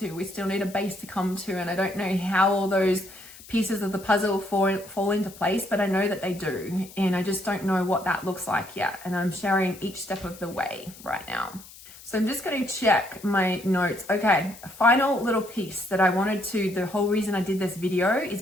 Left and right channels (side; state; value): left; noise; hiss, 19 dB below the sound